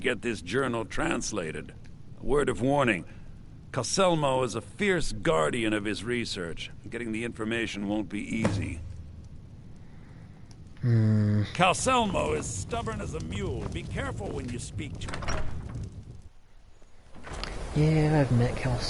this journal translated. A word of warning. Calselmo is a fierce guardian of his research. Getting the information won't be easy. Calselmo is stubborn as a mule. Be careful when you speak to him. Yeah, I've met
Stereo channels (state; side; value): identical; both; correlation 1.00